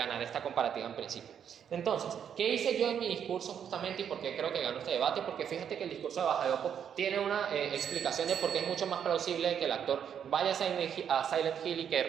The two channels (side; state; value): left; quieter; 8.4 dB